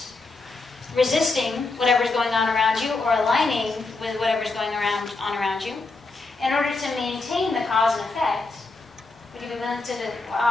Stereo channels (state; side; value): quieter; right; 3.7 dB